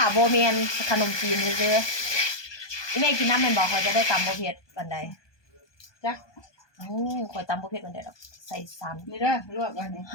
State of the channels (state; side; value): late; right; 1.2 ms